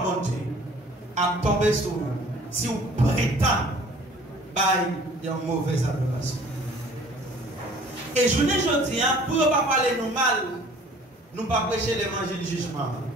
bon Dieu a tombé sur vous. Si vous prétendez, il y a une mauvaise adoration. Et je ne dis pas, pour ne pas parler nous mal, nous ne pas prêcher l'évangile du jugement.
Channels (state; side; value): normal; both; correlation 0.52